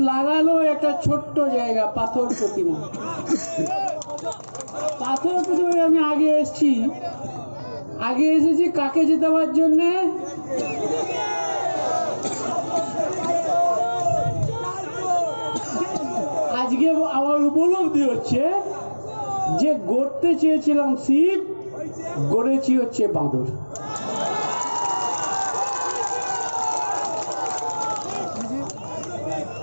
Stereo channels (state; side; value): inverted; both; correlation -1.00